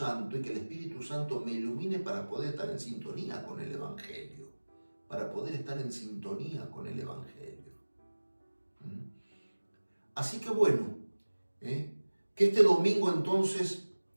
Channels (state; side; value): inverted; both; correlation -1.00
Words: y que el Espíritu Santo me ilumine para poder estar en sintonía con el Evangelio. Así que bueno, que este domingo entonces